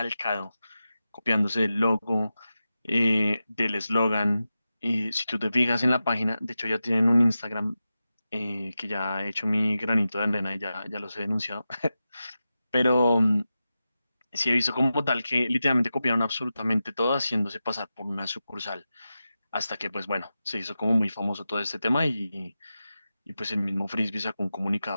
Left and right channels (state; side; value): inverted; both; correlation -0.92